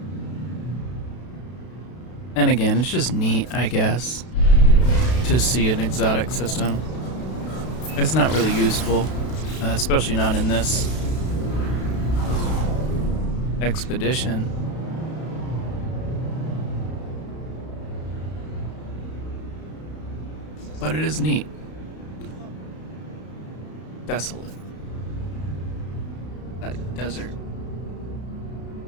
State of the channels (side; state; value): right; late; 32 ms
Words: And again, it's just neat, I guess, to see an exotic system. It's not really useful, especially not in this expedition. But it is neat. Desolate. That desert.